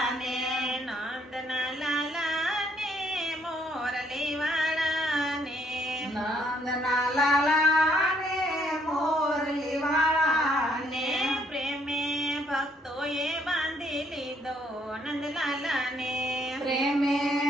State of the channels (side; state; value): both; normal; correlation 0.68